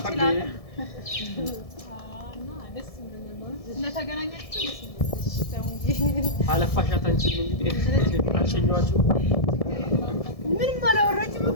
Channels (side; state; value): right; late; 1.7 ms